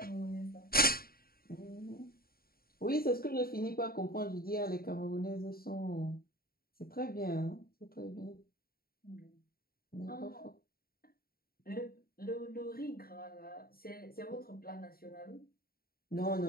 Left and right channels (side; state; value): right; late; 0.43 ms